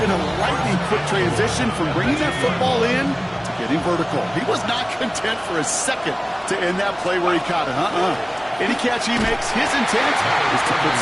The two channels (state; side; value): identical; both; correlation 1.00